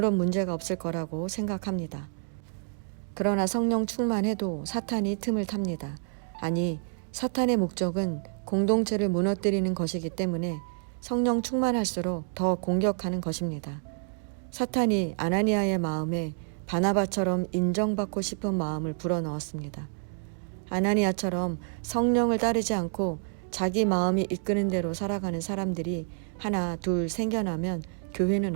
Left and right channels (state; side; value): silent; left; 59 dB below the other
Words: 문제가 없을 거라고 생각합니다. 그러나 성령 충만해도 사탄이 틈을 탑니다. 아니, 사탄의 목적은 공동체를 무너뜨리는 것이기 때문에 성령 충만할수록 더 공격하는 것입니다. 사탄이 아나니아의 마음에 바나바처럼 인정받고 싶은 마음을 불어넣었습니다. 아나니아처럼 성령을 따르지 않고 자기 마음이 이끄는 대로 살아가는 사람들이 하나 둘 생겨나면 교회는